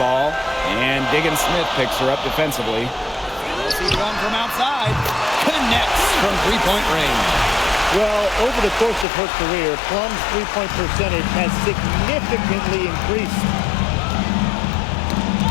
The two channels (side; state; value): right; drops out; at 9.1 s